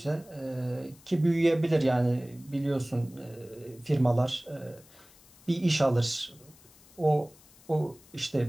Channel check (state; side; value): noise; left; hiss, 26 dB below the sound